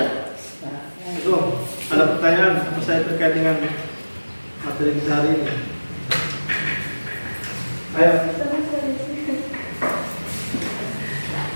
Belum. Ada pertanyaan apa saja terkait dengan materi kita hari ini? Ayo.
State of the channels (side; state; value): both; inverted; correlation -1.00